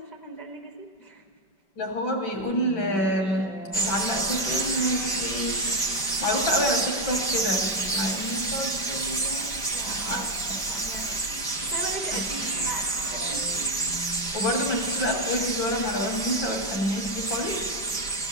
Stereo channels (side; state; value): right; late; 5.0 ms